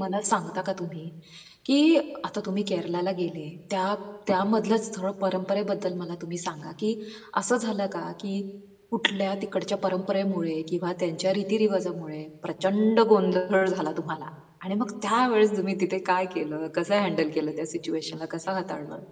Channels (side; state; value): both; identical; correlation 1.00